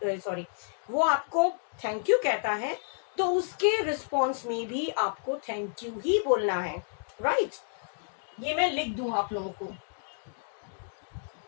वो आपको थैंक यू कहता है, तो उसके रिस्पॉन्स में भी आपको थैंक यू ही बोलना है. राइट? ये मैं लिख दूं आप लोगों को.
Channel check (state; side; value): silent; right; digital silence